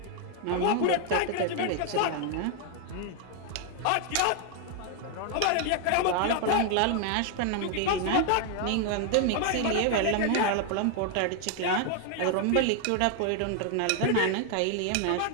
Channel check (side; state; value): both; different; correlation 0.00